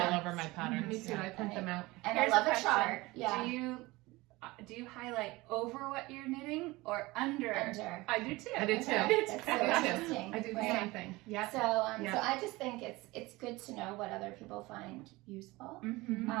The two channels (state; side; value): quieter; left; 21.3 dB